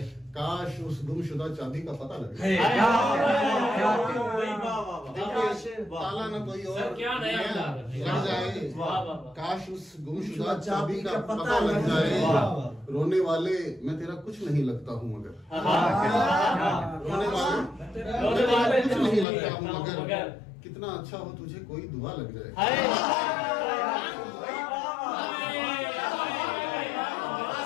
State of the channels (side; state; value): right; drops out; at 19.2 s